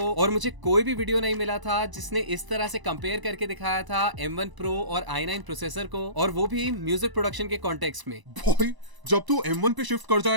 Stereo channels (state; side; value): late; left; 1.0 ms